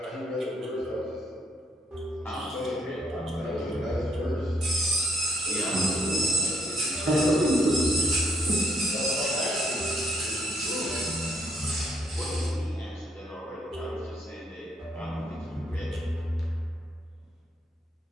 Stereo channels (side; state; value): both; normal; correlation 0.71